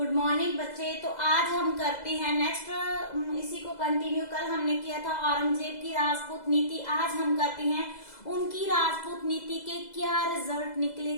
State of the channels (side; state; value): right; late; 2.0 ms